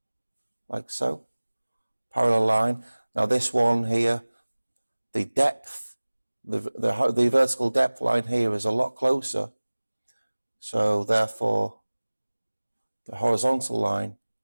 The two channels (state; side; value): inverted; both; correlation -1.00